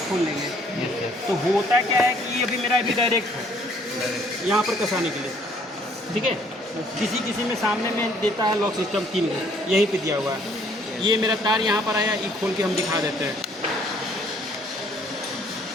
खोल लेंगे। Yes yes. तो होता क्या है कि ये अभी मेरा अभी डायरेक्ट है यहाँ पर कसाने के लिए, ठीक है। किसी किसी में सामने में देता है लॉक सिस्टम 3 यहीं पे दिया हुआ है। ये मेरा तार यहाँ पर आया, ये खोल के हम दिखा देते हैं।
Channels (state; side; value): normal; both; correlation 0.62